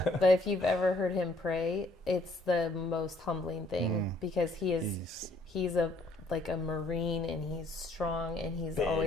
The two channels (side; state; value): both; normal; correlation 0.64